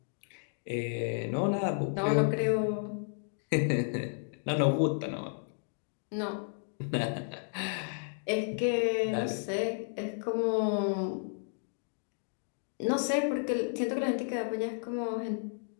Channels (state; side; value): silent; right; digital silence